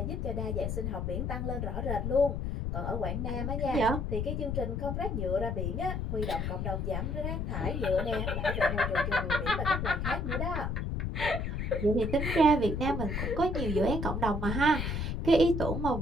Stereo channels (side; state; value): left; noise; rumble, 2 dB below the sound